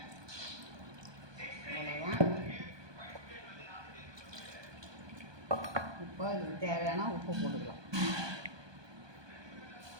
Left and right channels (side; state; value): left; late; 1.2 ms